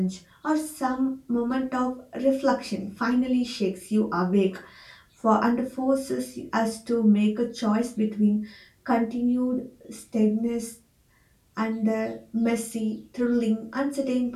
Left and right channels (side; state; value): both; identical; correlation 1.00